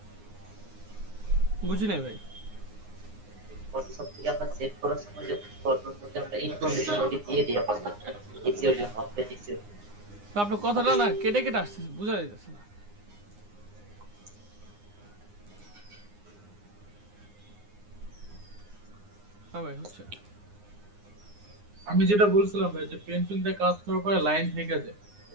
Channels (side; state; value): left; late; 9.7 ms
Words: বুঝি নাই ভাই। তো আপনার কথাটা না কেটে কেটে আসছে, বোঝা যাইতেছে না। হ্যাঁ ভাই হচ্ছে। আমি যেটা বলছিলাম ভাই যে পেন্সিলতে কাজ করার পরে লাইন থেকে যায়,